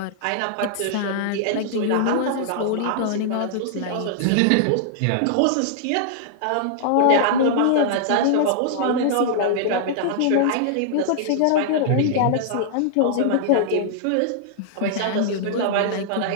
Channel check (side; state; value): both; different; correlation -0.01